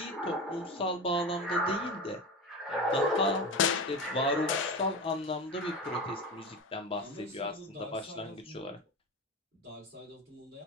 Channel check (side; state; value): both; normal; correlation 0.25